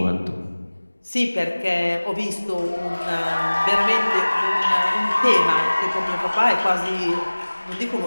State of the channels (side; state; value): both; inverted; correlation -1.00